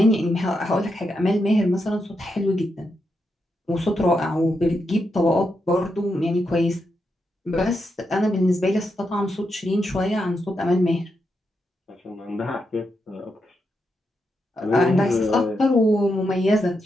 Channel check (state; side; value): normal; both; correlation 0.84